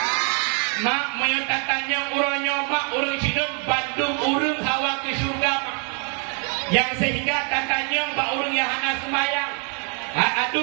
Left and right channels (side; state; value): left; quieter; 38.4 dB